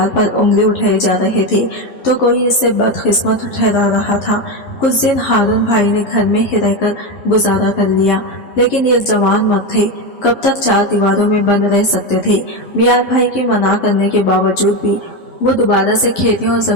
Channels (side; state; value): right; late; 11 ms